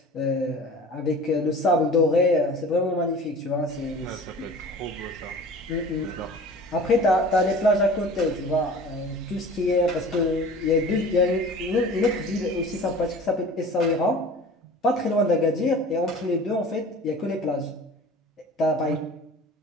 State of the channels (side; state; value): both; normal; correlation 0.42